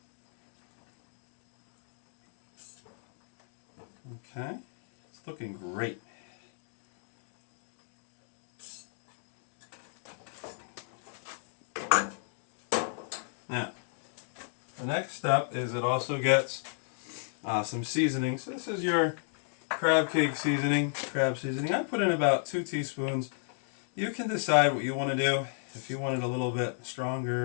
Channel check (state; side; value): silent; right; digital silence